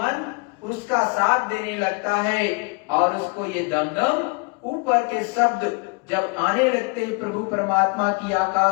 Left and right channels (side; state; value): right; quieter; 31.0 dB